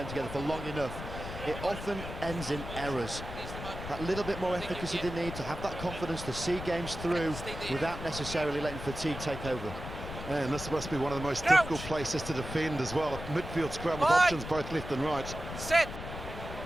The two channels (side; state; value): left; noise; rumble, 9 dB below the sound